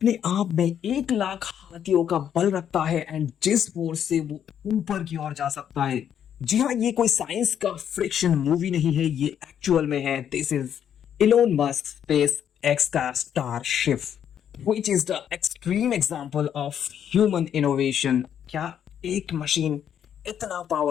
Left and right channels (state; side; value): quieter; right; 9.2 dB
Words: आप में 1 लाख हाथियों का बल रखता है एंड जिस फोर्स से वो ऊपर की ओर जा सकता है। जी हाँ, ये कोई साइंस का फ्रिक्शन मूवी नहीं है, ये एक्चुअल में है। This is Elon Musk space x का starship which is the extreme example of human innovation। क्या एक मशीन इतना